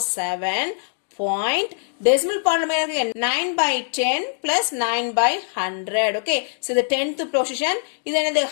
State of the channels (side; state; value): right; silent; digital silence